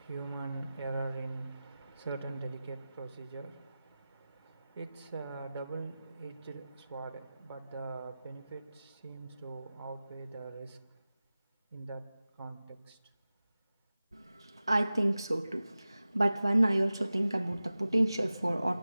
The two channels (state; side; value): inverted; both; correlation -0.96